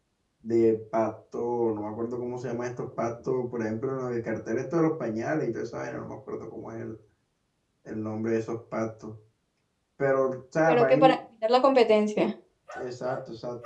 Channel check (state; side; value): identical; both; correlation 1.00